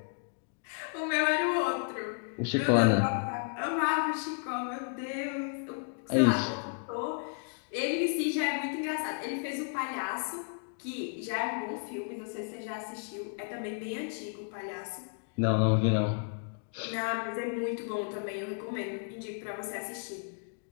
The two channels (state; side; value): silent; right; 56 dB below the other